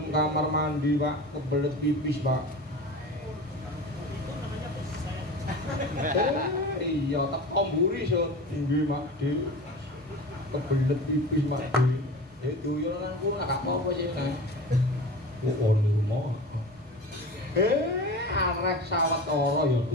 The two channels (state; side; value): normal; both; correlation 0.34